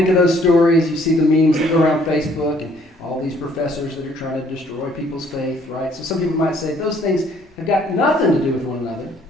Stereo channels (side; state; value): both; normal; correlation 0.62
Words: of those stories. You see the memes that go around Facebook, and all these professors that are trying to destroy people's faith, right? So some people might say those things have got nothing to do with one another.